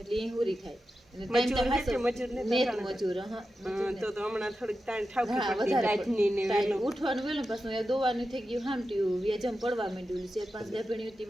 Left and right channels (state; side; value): normal; both; correlation 0.91